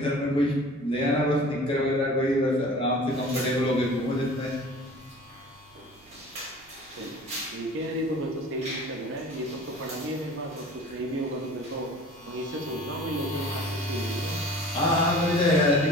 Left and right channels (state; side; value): noise; right; hum, 29 dB below the sound